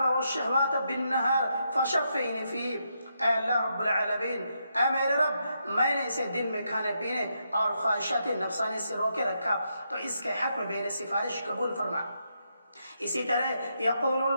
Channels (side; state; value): both; inverted; correlation -0.81